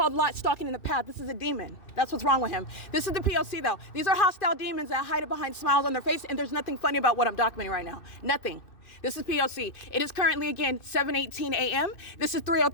stalking in the path. This is a demon. That's what's wrong with him. This is the P.O.C. though. These are hostile demons that hide it behind smiles on their face, and there's nothing funny about what I'm documenting right now. Nothing. This is P.O.C. It is currently, again, 7:18 a.m. This is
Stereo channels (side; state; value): right; late; 2.6 ms